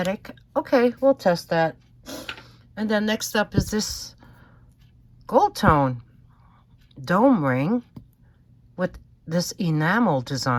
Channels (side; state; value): both; identical; correlation 1.00